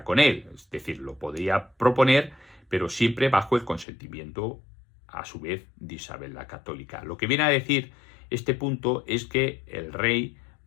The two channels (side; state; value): right; drops out; at 3.9 s